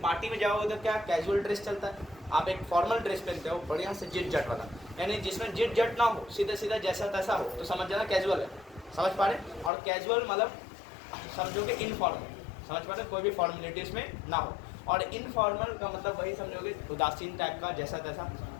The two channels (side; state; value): right; drops out; at 9.7 s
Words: पार्टी में जाओगे तो क्या कैजुअल ड्रेस चलता है, आप एक फॉर्मल ड्रेस पहनते हो बढ़िया से जिट जट वाला, यानी जिसमें जिट जट ना हो, सीधा सीधा जैसा तैसा हो, तो समझ जाना कैजुअल है। समझ पा रहे? और कैजुअल मतलब समझोगे इनफॉर्मल, समझ पा रहे, कोई भी फॉर्मेलिटीज में ना हो। और इनफॉर्मल का मतलब वही समझोगे उदासीन टाइप का जैसा तैसा।